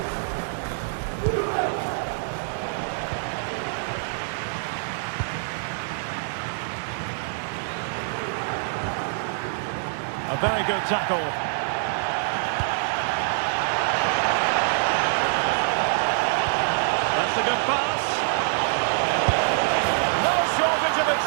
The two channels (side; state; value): left; silent; 62 dB below the other